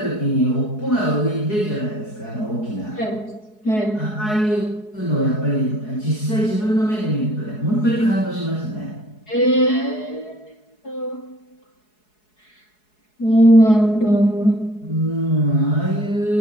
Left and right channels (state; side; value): late; right; 4.7 ms